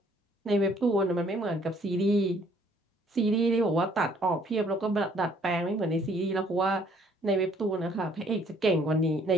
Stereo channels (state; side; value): normal; both; correlation 0.62